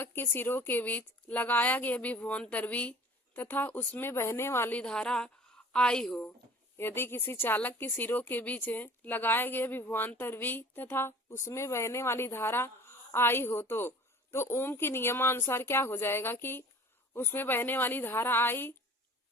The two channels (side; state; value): both; normal; correlation 0.45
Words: के सिरों के बीच लगाया गया विभवांतर V तथा उसमें बहने वाली धारा I हो। यदि किसी चालक के सिरों के बीच लगाया गया विभवांतर V तथा उसमें बहने वाली धारा I हो तो ओम के नियमानुसार क्या हो जाएगा कि उसमें बहने वाली धारा I